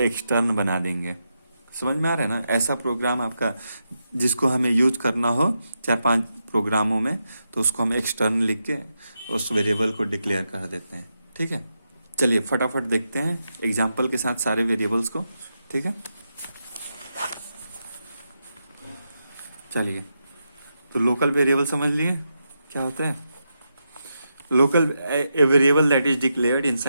बना देंगे। समझ में आ रहा है ना? ऐसा प्रोग्राम आपका जिसको हमें यूज करना हो 4-5 प्रोग्रामों में, तो उसको हम एक्सटर्न लिख के उस वेरिएबल को डिक्लेयर कर देते हैं। ठीक है, चलिए फटाफट देखते हैं एग्जाम्पल के साथ सारे वेरिएबल्स को। ठीक है, चलिए तो लोकल वेरिएबल समझ लिए क्या होते हैं। Local a variable that is declared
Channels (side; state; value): both; inverted; correlation -0.86